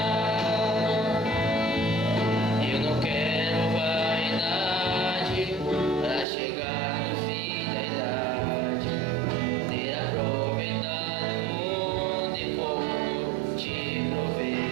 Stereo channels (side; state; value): left; drops out; at 6.2 s